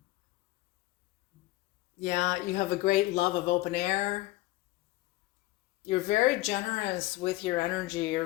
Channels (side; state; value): right; quieter; 18.4 dB